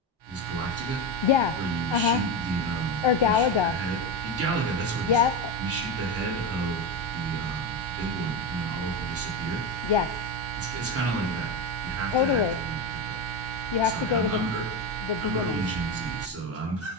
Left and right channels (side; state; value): both; normal; correlation 0.16